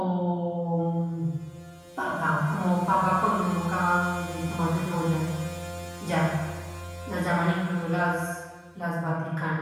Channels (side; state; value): both; identical; correlation 1.00